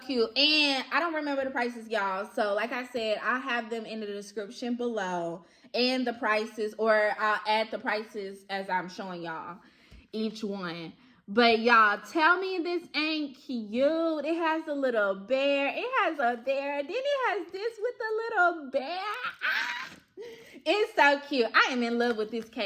And I don't remember the prices, y'all. So like I said, I have them in the description below and the prices, or I'll add the prices as I'm showing y'all each one. But y'all, tell me this ain't cute. It has a little bear. It has a bear. Then it has this with a little bear. It's so cute. I am in love with this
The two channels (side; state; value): both; identical; correlation 1.00